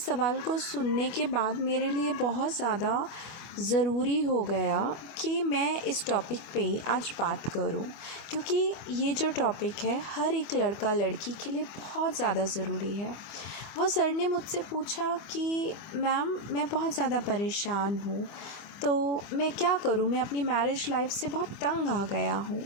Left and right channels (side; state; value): right; late; 25 ms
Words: सवाल को सुनने के बाद मेरे लिए बहुत ज़्यादा ज़रूरी हो गया कि मैं इस टॉपिक पे आज बात करूं, क्योंकि ये जो टॉपिक है हर एक लड़का लड़की के लिए बहुत ज़्यादा ज़रूरी है। वो सर ने मुझसे पूछा कि मैम मैं बहुत ज़्यादा परेशान हूँ, तो मैं क्या करूँ, मैं अपनी मैरिज लाइफ से बहुत तंग आ गया हूँ।